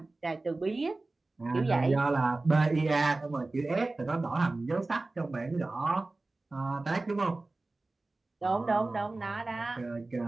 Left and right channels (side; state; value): left; quieter; 3.2 dB